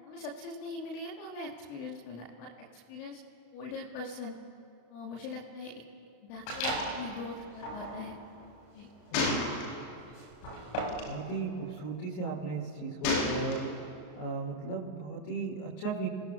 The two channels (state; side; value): late; right; 33 ms